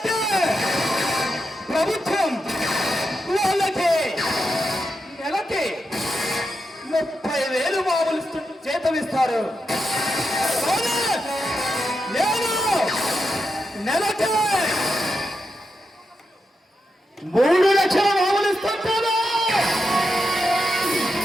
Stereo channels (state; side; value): normal; both; correlation 0.86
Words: ప్రభుత్వం వాళ్ళకి నెలకి 30,000 మామూలు జీతం ఇస్తారు. నేను నెలకి 3 లక్షల మామూలు ఇస్తుంటాను.